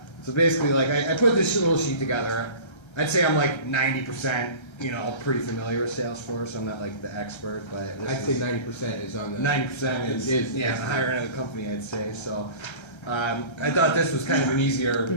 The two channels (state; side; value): late; right; 1.3 ms